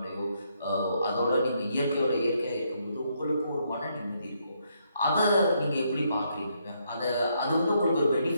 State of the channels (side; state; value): both; inverted; correlation -0.75